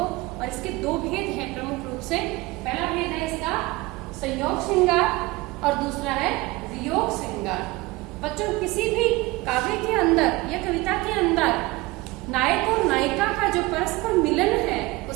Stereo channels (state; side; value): quieter; left; 21.6 dB